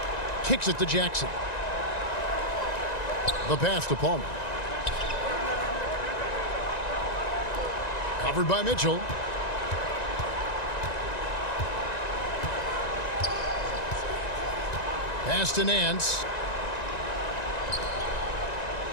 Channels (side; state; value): right; late; 1.9 ms